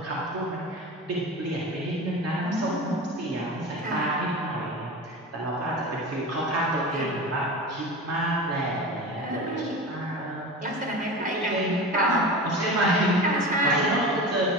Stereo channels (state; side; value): normal; both; correlation 0.30